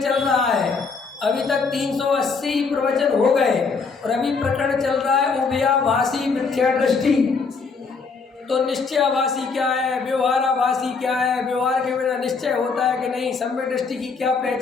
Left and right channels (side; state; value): right; quieter; 4.8 dB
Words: चल रहा है, अभी तक 380 प्रवचन हो गए, और अभी प्रकरण चल रहा है उभयाभासी मिथ्या दृष्टि। तो निश्चयाभासी क्या है, व्यवहाराभासी क्या है, व्यवहार के बिना निश्चय होता है कि नहीं, सम्यक दृष्टि की क्या